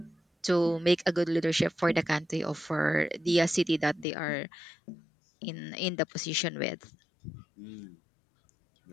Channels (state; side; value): drops out; right; at 4.0 s